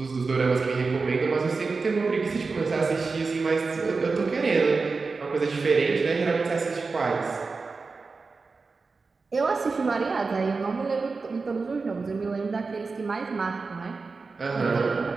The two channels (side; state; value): left; quieter; 4.3 dB